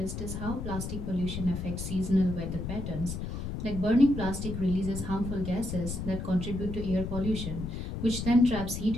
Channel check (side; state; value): left; noise; rumble, 5 dB below the sound